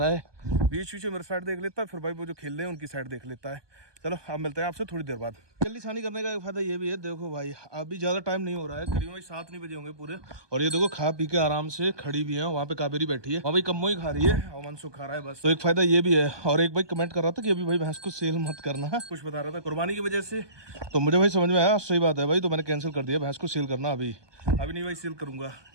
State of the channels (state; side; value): late; left; 1.2 ms